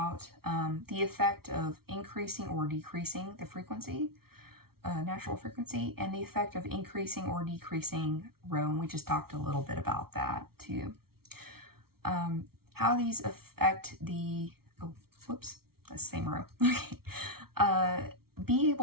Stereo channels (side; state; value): left; late; 0.94 ms